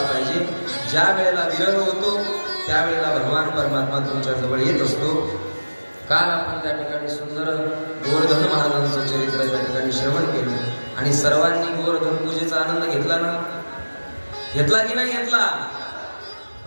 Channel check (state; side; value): inverted; both; correlation -1.00